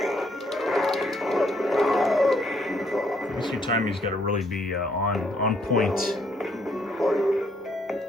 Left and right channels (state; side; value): normal; both; correlation 0.69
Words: This few times he's got to really be on point.